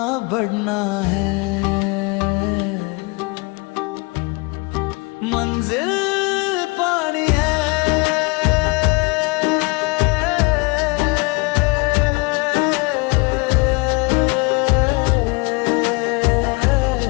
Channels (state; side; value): quieter; right; 28.2 dB